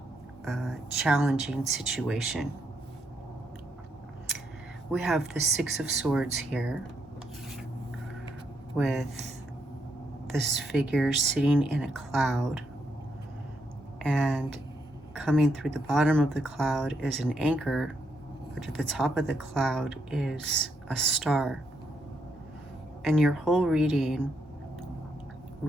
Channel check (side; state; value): both; normal; correlation 0.78